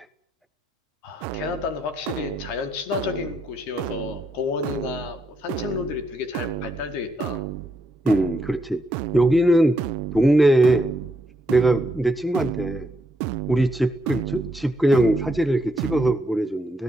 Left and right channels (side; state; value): both; normal; correlation 0.78